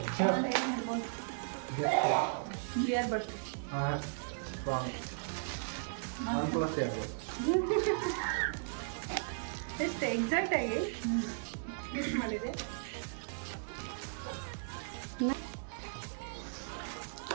ಕ್ಲಿಯರ್ ಬರ್ತದೆ. ಹಾಂ ಎಷ್ಟು ಎಕ್ಸಾಕ್ಟ್ ಆಗಿ ಫಿಕ್ಸ್ ಮಾಡಿದೆ.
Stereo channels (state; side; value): silent; left; digital silence